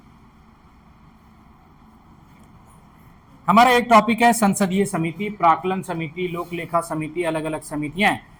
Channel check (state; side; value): identical; both; correlation 1.00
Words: हमारा एक टॉपिक है संसदीय समिति, प्राक्कलन समिति, लोक लेखा समिति, अलग अलग समितियां हैं,